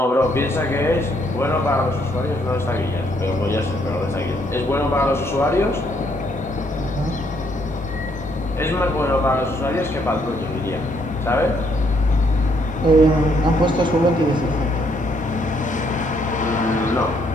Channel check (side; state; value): both; normal; correlation 0.70